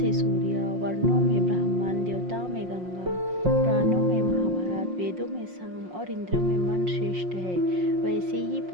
सूर्य, वर्णों में ब्राह्मण, देवताओं में गंगा, पुराणों में महाभारत, वेदों में साम और इंद्रियों में मन श्रेष्ठ है, वैसे ही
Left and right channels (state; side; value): late; left; 5.5 ms